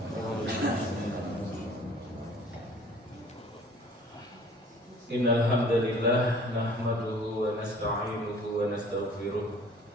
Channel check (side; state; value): both; normal; correlation 0.51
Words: Innal hamdalillah nahmaduhu wa nasta'inuhu wa nastaghfiruh